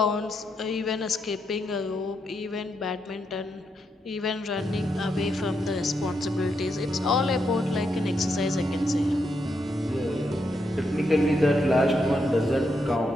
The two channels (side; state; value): both; normal; correlation 0.81